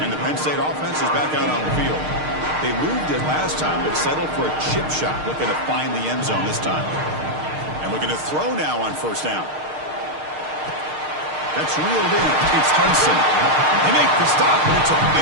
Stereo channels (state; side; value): late; left; 6.5 ms